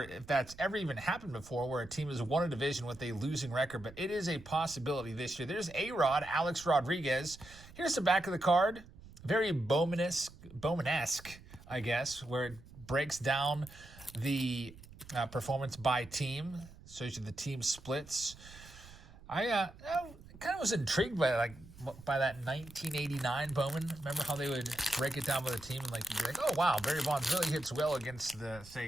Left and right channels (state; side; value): noise; right; rumble, 19 dB below the sound